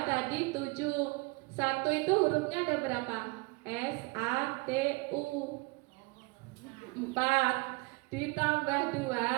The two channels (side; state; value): left; quieter; 26.3 dB